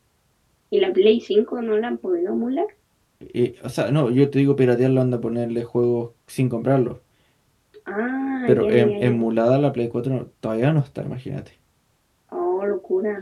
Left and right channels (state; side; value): identical; both; correlation 1.00